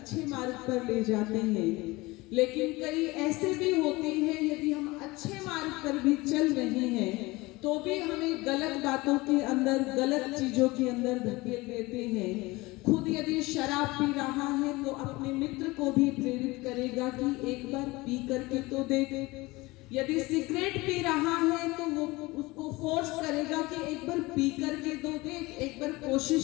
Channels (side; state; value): right; quieter; 21.8 dB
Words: मार्ग पर ले जाते हैं, लेकिन कई ऐसे भी होते हैं यदि हम अच्छे मार्ग पर भी चल रहे हैं तो भी हमें गलत बातों के अंदर, गलत चीजों के अंदर धकेल देते हैं। खुद यदि शराब पी रहा है तो अपने मित्र को भी प्रेरित करेगा कि एक बार पी करके तो देख, यदि सिगरेट पी रहा है तो वो उसको फोर्स करेगा कि एक बार पी करके तो देख, एक बार